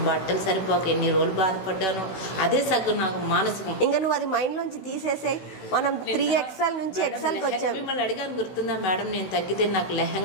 బట్టలు సరిపోక ఎన్ని రోజులు బాధపడ్డాను. అదే సగం నాకు మానసికం. ఇంకా నువ్వు అది మైండ్లోంచి తీసేసాయి. మనం 3XL నుంచి XLకి వచ్చాం. మిమ్మల్ని అడిగాను గుర్తుందా మేడం, నేను తగ్గితే నాకు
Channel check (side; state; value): right; late; 16 ms